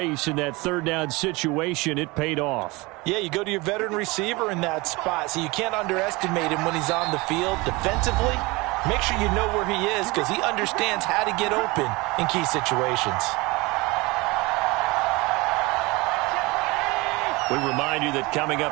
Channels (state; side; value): quieter; left; 23.8 dB